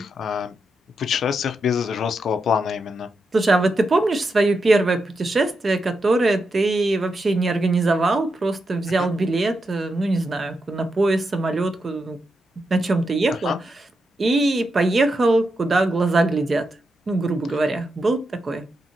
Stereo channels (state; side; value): normal; both; correlation 0.85